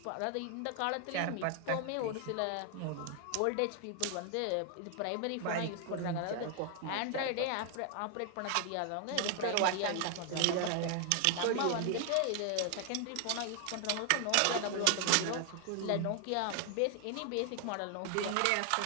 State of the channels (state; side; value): different; both; correlation 0.00